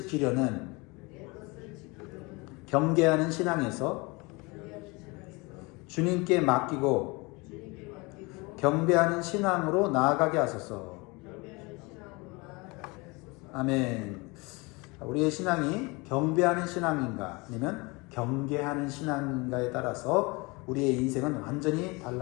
경계하는 신앙에서 주님께 맡기고 경배하는 신앙으로 나아가게 하소서. 아멘. 우리의 신앙이 경배하는 신앙인가 아니면 경계하는 신앙인가에 따라서 우리의 인생은 완전히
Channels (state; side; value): quieter; right; 26.2 dB